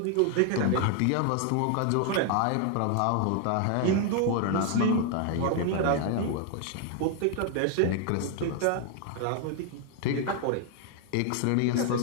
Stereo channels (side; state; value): both; different; correlation 0.00